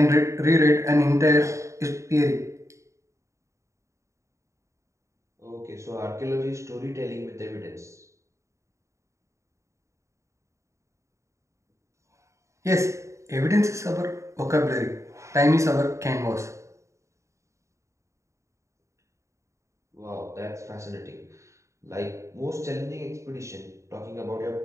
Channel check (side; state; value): left; late; 0.14 ms